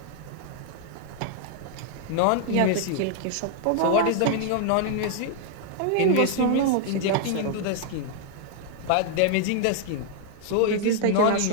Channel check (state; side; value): different; both; correlation -0.01